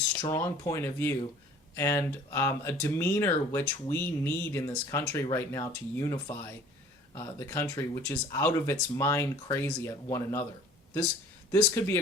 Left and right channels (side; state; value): both; normal; correlation 0.49